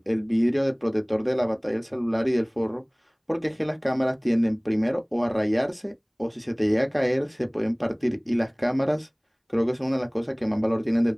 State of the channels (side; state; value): both; identical; correlation 1.00